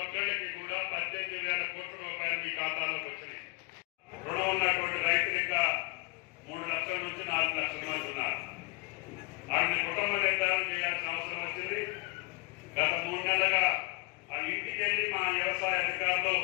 ఒక్కరికి కూడా 18,000 కోట్ల రూపాయలు మీ ఖాతాలోకి వచ్చినాయి. రుణం ఉన్నటువంటి రైతులు ఇంకా 3 లక్షల నుంచి 4 లక్షల మంది ఉన్నారు. వాళ్ళని కుటుంబ నిర్ధారణ చేయాల్సిన అవసరం వచ్చింది. గత 3 నెలలుగా ఆ ఇంటికి వెళ్ళి మా వ్యవసాయ అధికారులు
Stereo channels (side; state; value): right; quieter; 26.5 dB